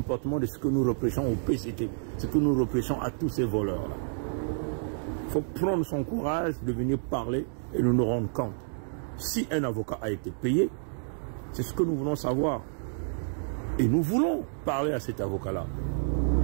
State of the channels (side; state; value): left; silent; digital silence